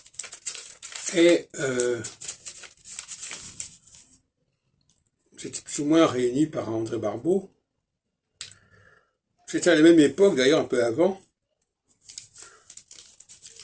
Et c'était plus ou moins réuni par André Barbeau. C'était à la même époque, d'ailleurs un peu avant,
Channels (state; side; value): identical; both; correlation 1.00